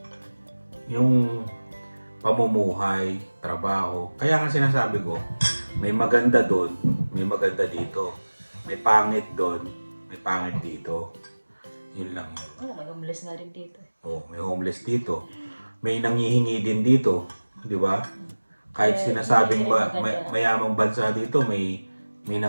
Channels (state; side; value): inverted; both; correlation -1.00